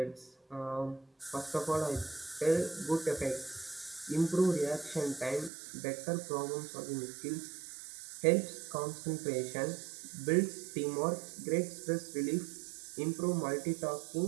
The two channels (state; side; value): drops out; left; at 5.5 s